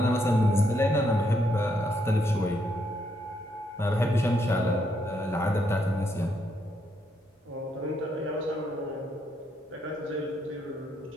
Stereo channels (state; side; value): normal; both; correlation 0.76